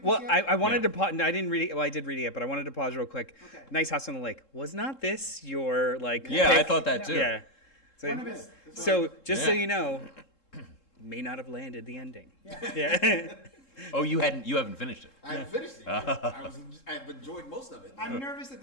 this Well, yet? I wanted to pause. No, I didn't read it. Well, I did read it yet, but I wanted to pause real quick. Okay. Nice House on the Lake. Was not this your pick? I thought that too. Yeah. So, just so Yeah. you know, may not have landed the ending. Yeah. Oh, you haven't finished it. I haven't finished it. I've enjoyed most of it. I'm nervous that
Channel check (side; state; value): right; late; 3.7 ms